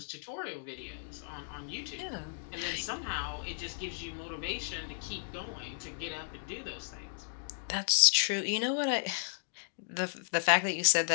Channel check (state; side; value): silent; right; digital silence